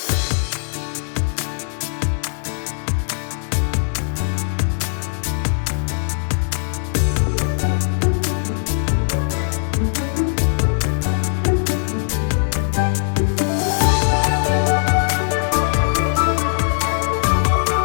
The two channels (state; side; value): silent; right; digital silence